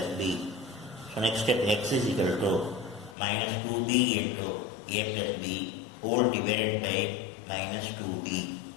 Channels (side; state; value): right; drops out; at 3.2 s